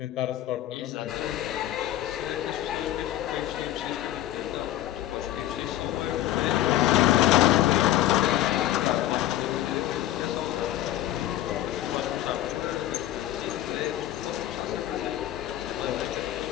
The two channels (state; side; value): quieter; right; 13.6 dB